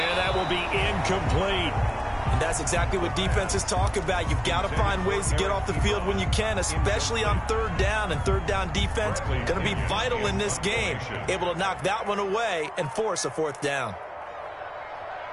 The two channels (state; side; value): identical; both; correlation 1.00